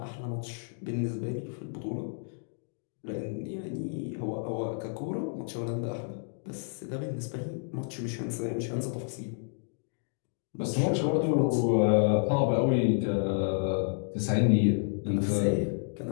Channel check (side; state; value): right; silent; digital silence